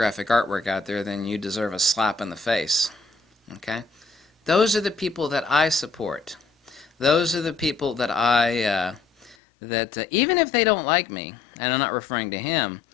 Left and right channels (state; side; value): drops out; right; at 9.3 s